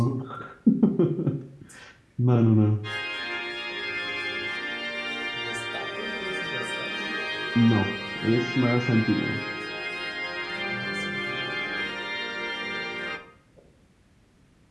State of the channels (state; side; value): identical; both; correlation 1.00